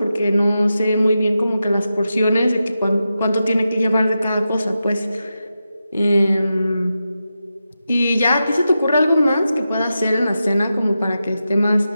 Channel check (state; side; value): inverted; both; correlation -0.90